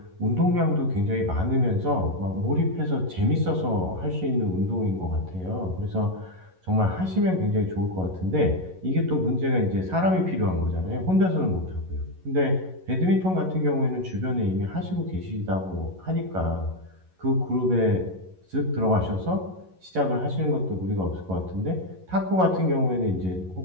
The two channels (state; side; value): late; left; 11 ms